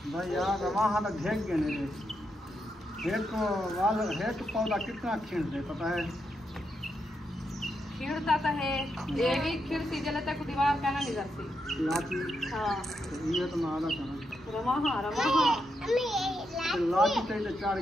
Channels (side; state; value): both; normal; correlation 0.83